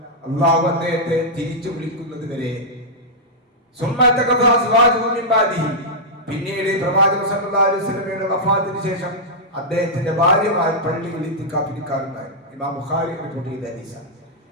അല്ലാഹു അദ്ദേഹത്തെ തിരിച്ചു വിളിക്കുന്നത് വരെ. പിന്നീട് പ്രവാചകൻ സല്ലല്ലാഹു അലൈഹി വസല്ലമയുടെ വഫാത്തിന് ശേഷം അദ്ദേഹത്തിന്റെ ഭാര്യമാർ പള്ളിയിൽ ഇത്തിക്കാഫിരിക്കാറുണ്ടായിരുന്നു. ഇമാം ബുഖാരി റിപ്പോർട്ട് ചെയ്ത ഹദീസാണ്.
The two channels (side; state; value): both; normal; correlation -0.09